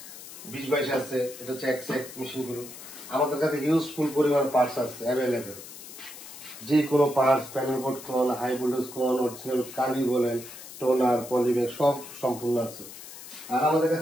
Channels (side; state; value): left; noise; hiss, 14 dB below the sound